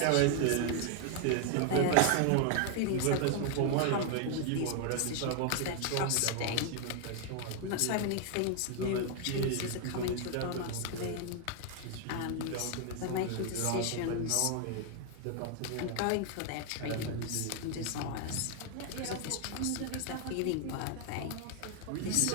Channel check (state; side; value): different; both; correlation 0.00